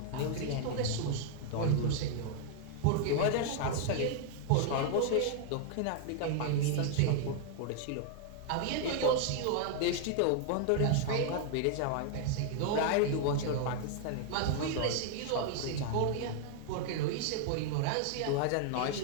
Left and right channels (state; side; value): different; both; correlation 0.00